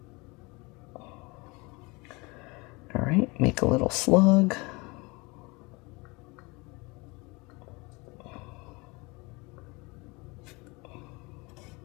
All right, make a little slug.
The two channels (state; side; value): quieter; right; 26.2 dB